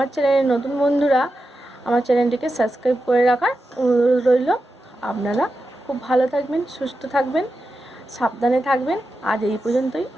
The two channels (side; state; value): both; normal; correlation 0.90